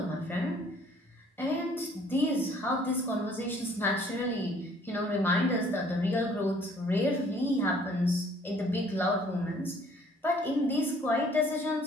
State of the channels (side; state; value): both; normal; correlation 0.59